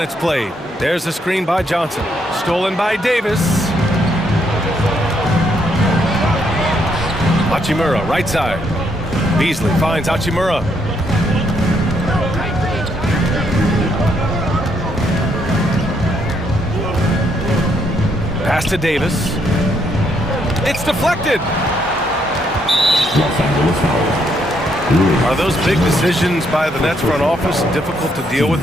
played. There's a screen by Johnson. Stolen by Davis. Hachimura, right side. Beasley finds Hachimura. Pass to Davis. It's deflected. Are those big decisions by the Nets front office difficult to deal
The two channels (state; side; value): normal; both; correlation 0.74